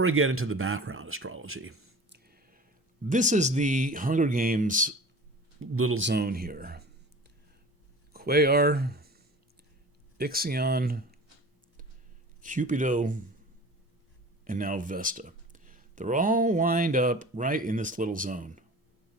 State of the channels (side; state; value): both; normal; correlation 0.39